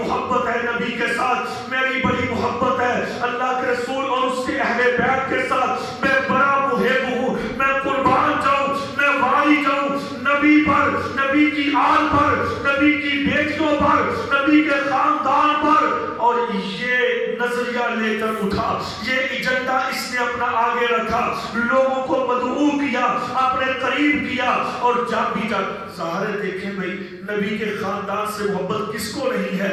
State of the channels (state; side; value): identical; both; correlation 1.00